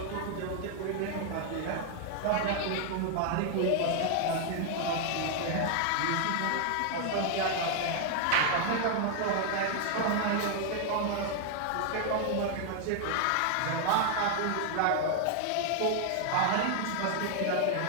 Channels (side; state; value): both; different; correlation 0.00